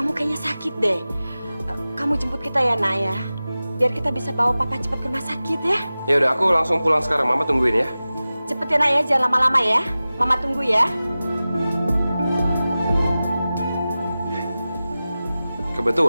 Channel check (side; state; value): both; inverted; correlation -0.96